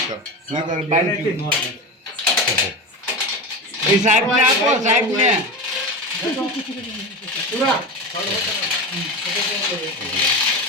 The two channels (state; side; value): normal; both; correlation 0.24